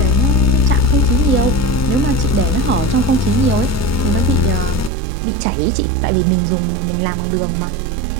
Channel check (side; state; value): left; drops out; at 4.9 s